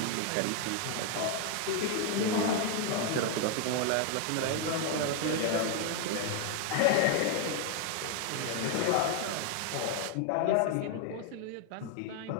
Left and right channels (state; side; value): different; both; correlation 0.01